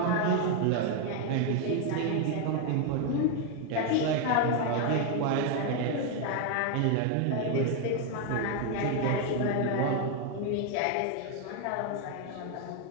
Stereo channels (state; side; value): different; both; correlation 0.01